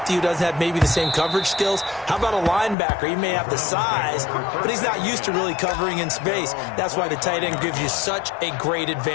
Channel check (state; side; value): drops out; right; at 2.8 s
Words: who doesn't have maybe the same coverage skills? How about a linebacker? He may have the size, but he's not used to really covering in space. That's why the tight end gives you such a great